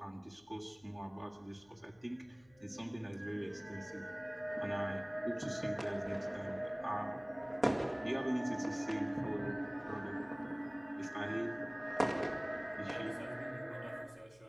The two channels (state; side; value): noise; left; hum, 29 dB below the sound